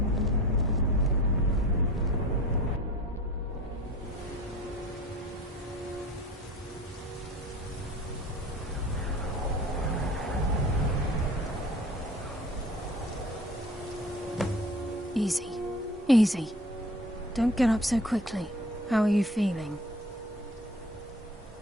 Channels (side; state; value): both; normal; correlation 0.43